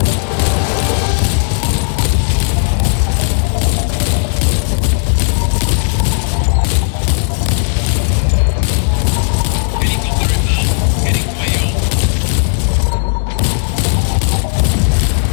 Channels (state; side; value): silent; right; digital silence